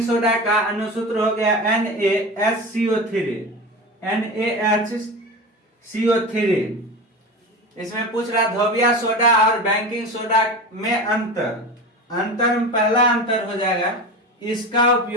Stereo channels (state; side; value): normal; both; correlation 0.27